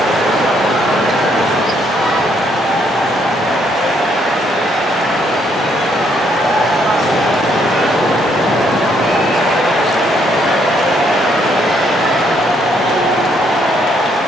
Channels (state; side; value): normal; both; correlation 0.70